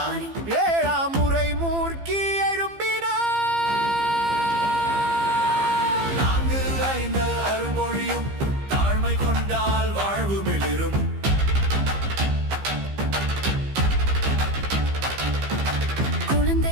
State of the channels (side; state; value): left; late; 15 ms